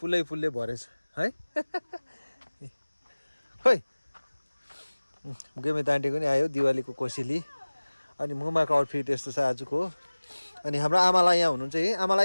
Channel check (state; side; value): inverted; both; correlation -1.00